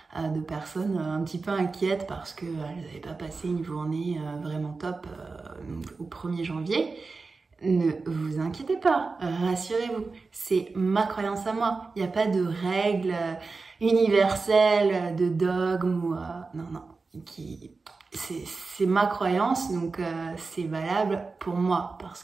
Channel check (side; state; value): left; quieter; 4.1 dB